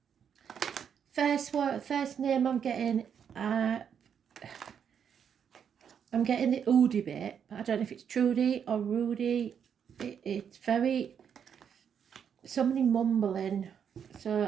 First name I'm getting the Oodie bit, but I don't know if it's Trudy or Rudy. It's very, somebody mumbling,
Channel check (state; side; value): quieter; left; 7.8 dB